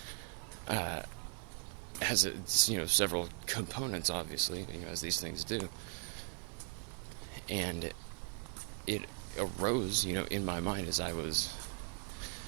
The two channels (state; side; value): quieter; left; 39.1 dB